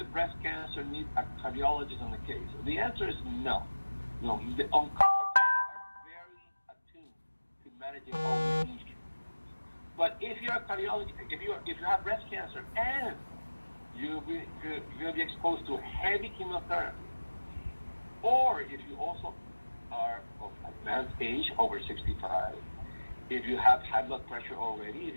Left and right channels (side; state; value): both; inverted; correlation -1.00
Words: breast cancer need a cardiologist on the case? The answer is no. No, the oncologists are very attuned to managing all these issues. But if you're a cardiologist, if you have breast cancer and you're going to be exposed to heavy chemotherapy, or if you also are of advanced age, over 65, if you have high blood pressure already, if